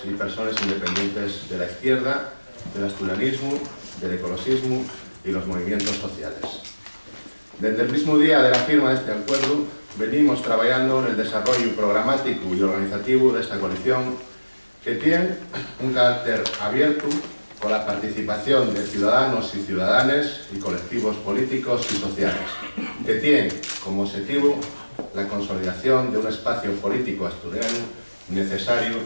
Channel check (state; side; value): inverted; both; correlation -1.00